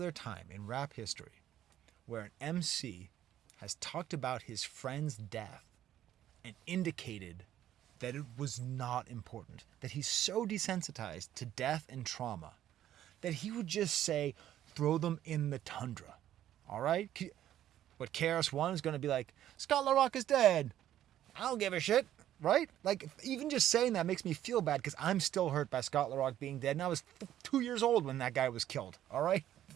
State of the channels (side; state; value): left; quieter; 12.0 dB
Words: time in rap history where an MC has talked about his friend's death and indicated that it was not important, that he's so desensitized to death and trauma that he would just say, throw them in the tundra. All right? But KRS-One is going to be like, Scott LaRock is dead. I don't give a shit. Right? Like, even just saying that makes me feel bad because I'm still hurt by Scott LaRock being dead. And I was 2 years old when that guy was killed. All right?